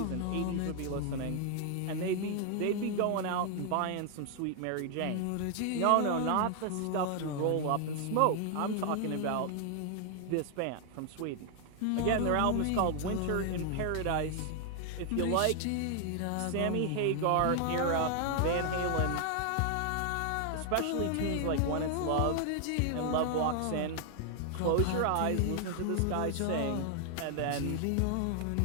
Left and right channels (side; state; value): both; different; correlation 0.00